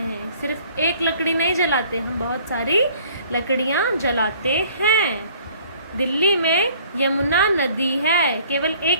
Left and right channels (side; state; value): both; inverted; correlation -0.55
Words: सिर्फ एक लकड़ी नहीं जलाते, हम बहुत सारी लकड़ियाँ जलाते हैं। दिल्ली में यमुना नदी है, केवल